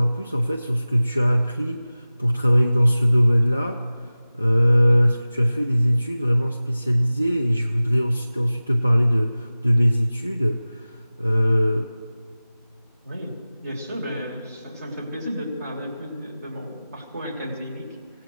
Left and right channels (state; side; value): inverted; both; correlation -0.97